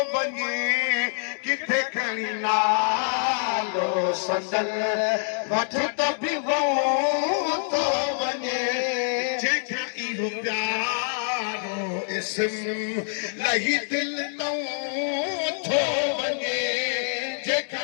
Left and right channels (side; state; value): right; silent; digital silence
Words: वञे किथे खणी नालो संदन वठ त बि थो वञे जेका इहो प्यारो इस्म लही दिल नौ थो वञे जेका